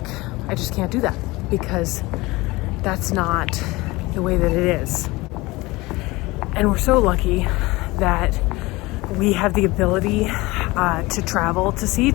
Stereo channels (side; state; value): right; quieter; 21.7 dB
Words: I just can't do that because that's not the way that it is. And we're so lucky that we have the ability to travel to see